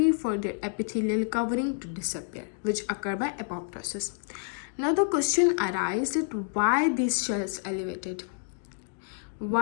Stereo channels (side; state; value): right; silent; digital silence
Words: for their epithelial covering to disappear, which occur by apoptosis. Now the question arises that why these shells elevated?